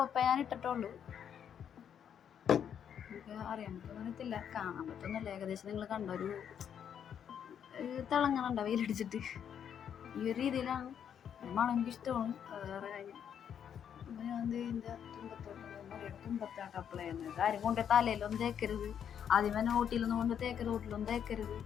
ഞാൻ ഇട്ടിട്ടുള്ളൂ. എനിക്ക് അറിയാൻ പറ്റുന്നില്ല, കാണാൻ പറ്റുന്നില്ല. ഏകദേശം നിങ്ങൾ കണ്ട ഒരു തിളങ്ങണുണ്ട വെയിലടിച്ചിട്ട്. ഈ ഒരു രീതിയിലാണ് മണം എനിക്കിഷ്ടമാണ്. വേറെ കാര്യം ഞാൻ ഇതിൻ്റെ തുമ്പത്താട്ട് അപ്ലൈ ചെയ്യുന്നത്. കാര്യം കൊണ്ട് തലയിലൊന്നും തേക്കരുത്, ആദ്യമേ നോട്ടിലൊന്നും കൊണ്ട് തേക്കരുത്, റോട്ടിലൊന്നും തേക്കരുത്,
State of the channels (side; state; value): right; quieter; 8.6 dB